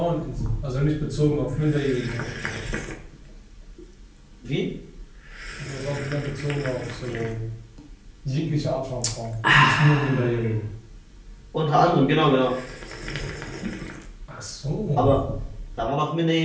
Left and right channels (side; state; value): both; identical; correlation 1.00